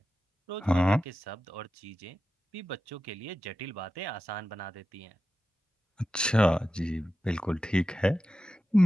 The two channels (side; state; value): both; normal; correlation 0.93